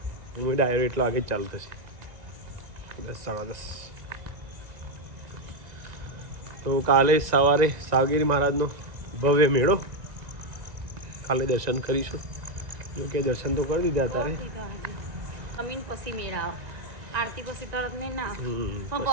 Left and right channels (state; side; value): late; left; 1.9 ms